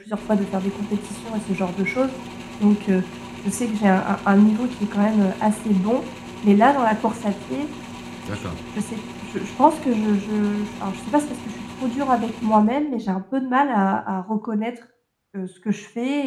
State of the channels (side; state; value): both; identical; correlation 1.00